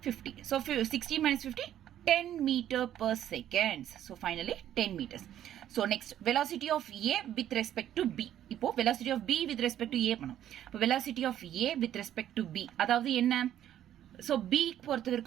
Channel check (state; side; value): quieter; left; 11.3 dB